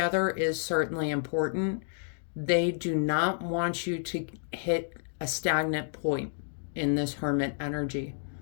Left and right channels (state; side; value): silent; right; digital silence